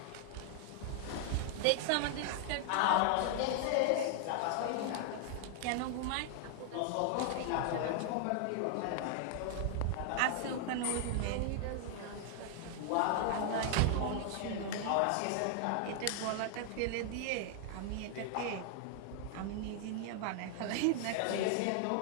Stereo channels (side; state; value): both; different; correlation 0.00